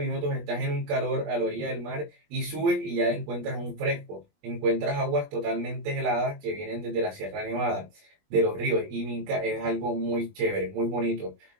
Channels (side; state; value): left; late; 20 ms